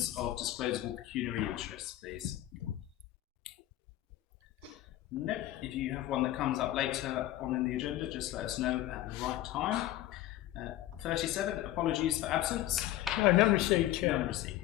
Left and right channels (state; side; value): quieter; right; 14.5 dB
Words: of disclosable pecuniary interests, please? No. If you have one that comes up later on in the agenda, just let us know at the right time. 37. Apologies for absence. No, none received, Chair. None